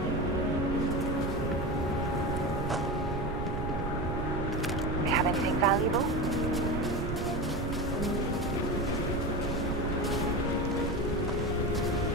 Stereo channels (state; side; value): noise; right; rumble, 6 dB below the sound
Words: We have anything valuable?